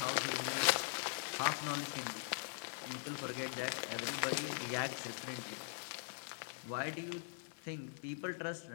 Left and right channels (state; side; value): silent; right; digital silence